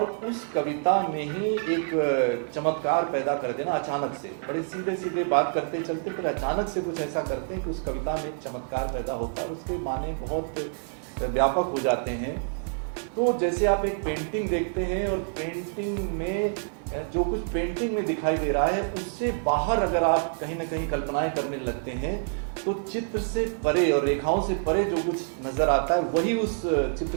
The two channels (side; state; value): left; silent; digital silence